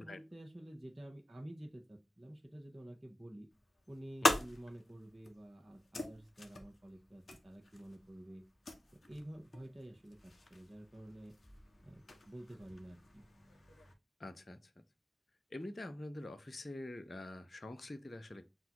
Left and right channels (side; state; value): both; normal; correlation 0.92